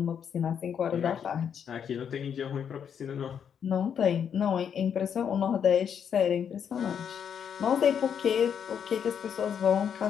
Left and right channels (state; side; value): quieter; right; 7.9 dB